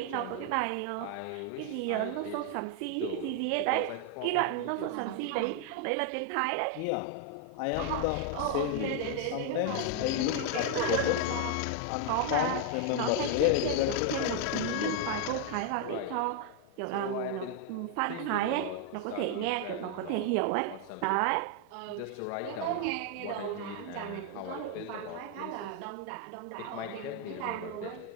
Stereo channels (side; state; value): both; different; correlation 0.00